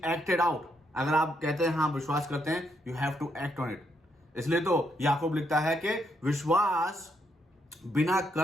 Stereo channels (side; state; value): both; normal; correlation 0.76